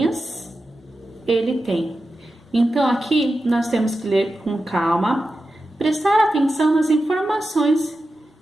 ele tem? Então, aqui nós temos que ler com calma, prestar atenção nas informações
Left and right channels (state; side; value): normal; both; correlation 0.91